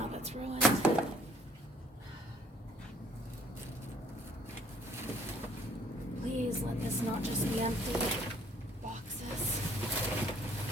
that's ruined. Please let this not just be empty boxes.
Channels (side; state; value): both; normal; correlation 0.59